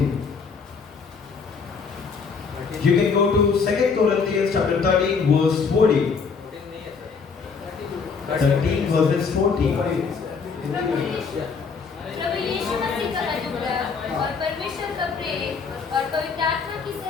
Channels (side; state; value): right; quieter; 5.4 dB